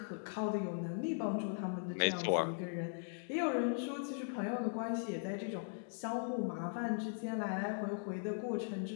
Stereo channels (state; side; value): silent; right; digital silence